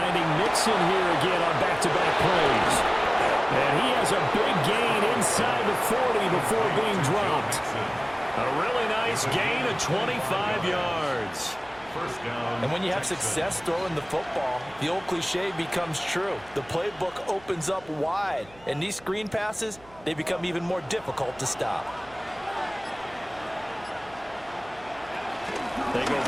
Mixon here again on back-to-back plays. And he has a big gain inside the 40 before being dropped. A really nice gain of 25 yards. 1st down. And when you have success throwing the football, the old cliche becomes true. The playbook opens up wide, and these screen passes, they become even more difficult to stop. They go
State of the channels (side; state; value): right; noise; hum, 25 dB below the sound